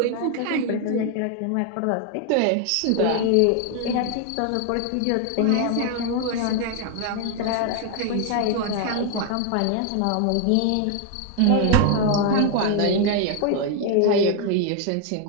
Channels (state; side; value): different; both; correlation 0.01